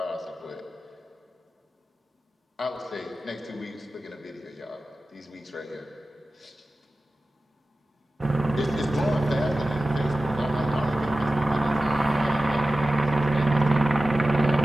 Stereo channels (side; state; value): both; normal; correlation 0.95